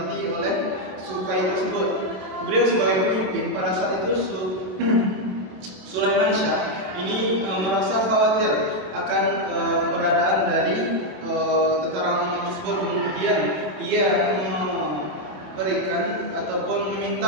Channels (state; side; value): late; left; 27 ms